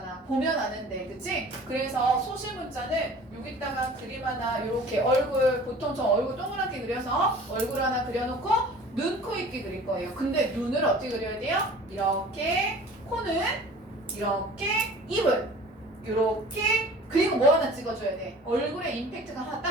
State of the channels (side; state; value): both; normal; correlation 0.44